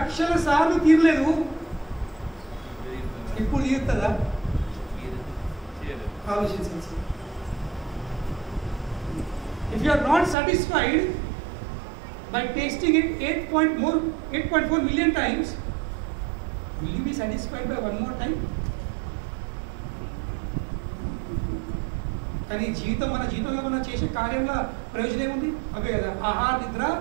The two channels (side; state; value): left; drops out; at 10.4 s